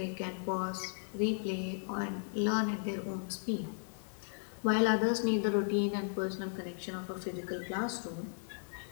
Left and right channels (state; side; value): silent; right; digital silence